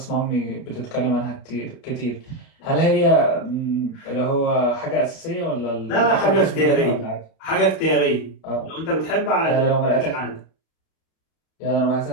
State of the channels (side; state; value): right; late; 36 ms